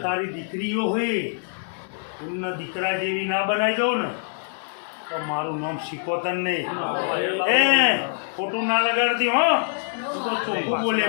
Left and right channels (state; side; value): silent; right; digital silence